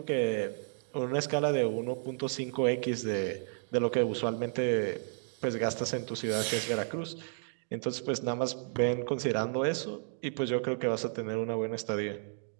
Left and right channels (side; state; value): left; silent; digital silence